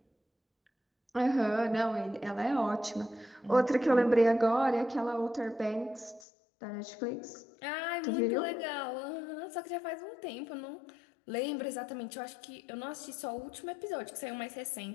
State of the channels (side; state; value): right; drops out; at 6.2 s